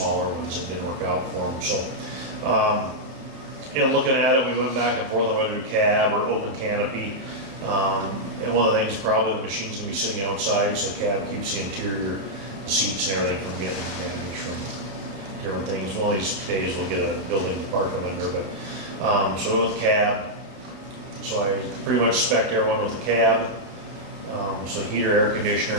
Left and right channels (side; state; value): left; late; 30 ms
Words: ones that didn't work out for them. So, looking at it, we went back and forth on whether to cab or open canopy. And one of the things, probably the machine's gonna be sitting outside, so the cab keeps the interior, the seats and everything from getting damaged from different things. One of these days we'll get a building to park them under, but, so we went with cab. So I pretty much spec'd everyone with a cab. So heater, air conditioner,